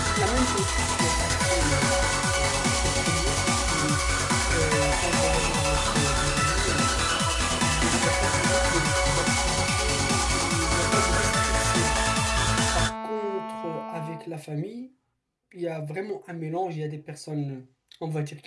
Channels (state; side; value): identical; both; correlation 1.00